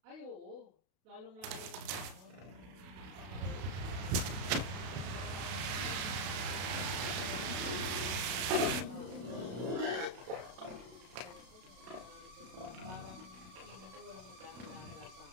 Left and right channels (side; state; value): left; late; 33 ms